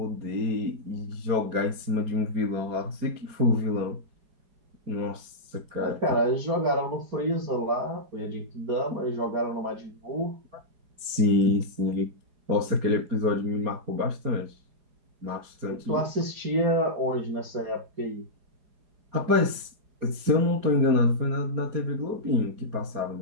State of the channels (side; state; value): left; late; 4.9 ms